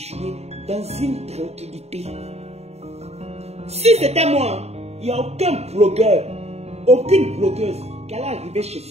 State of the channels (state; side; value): late; left; 0.31 ms